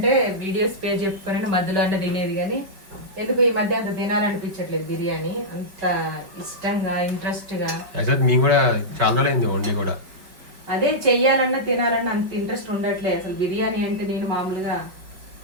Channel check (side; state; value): left; late; 5.2 ms